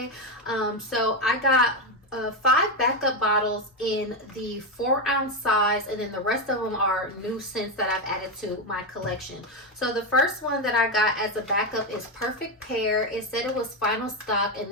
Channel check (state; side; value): normal; both; correlation 0.09